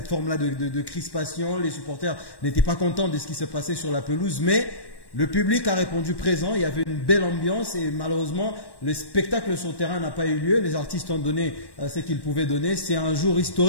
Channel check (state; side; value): late; right; 1.1 ms